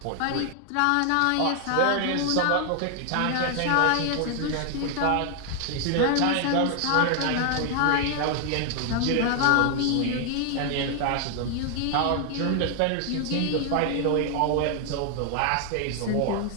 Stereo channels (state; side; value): different; both; correlation 0.00